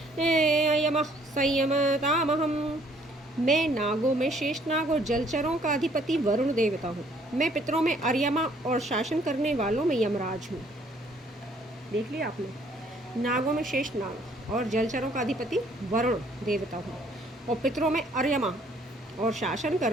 यमः संयमतामहं। मैं नागों में शेषनाग और जलचरों का अधिपति वरुण देवता हूँ। मैं पितरों में अर्यमा और शासन करने वालों में यमराज हूँ। देख लिया आपने। नागों में शेष नाग और जलचरों का अधिपति वरुण देवता हूँ, और पितरों में अर्यमा और शासन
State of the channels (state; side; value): normal; both; correlation 0.62